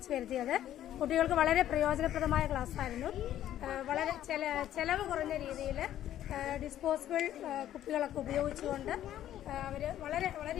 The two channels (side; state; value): right; quieter; 12.0 dB